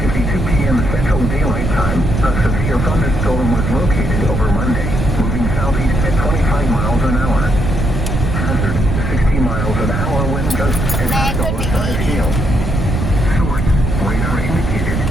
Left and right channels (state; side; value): noise; right; rumble, 2 dB below the sound